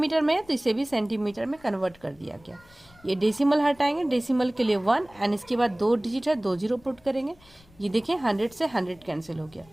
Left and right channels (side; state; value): left; noise; rumble, 28 dB below the sound